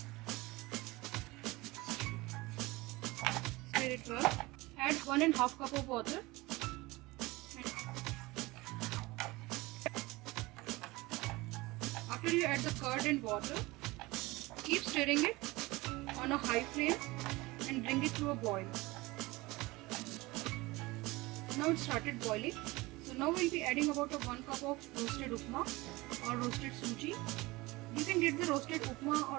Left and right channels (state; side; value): quieter; left; 21.7 dB